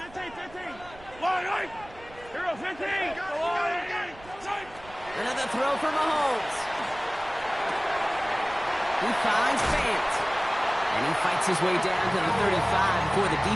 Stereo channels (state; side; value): noise; right; rumble, 21 dB below the sound